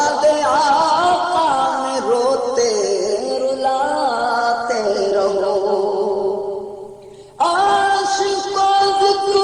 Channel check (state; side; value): identical; both; correlation 1.00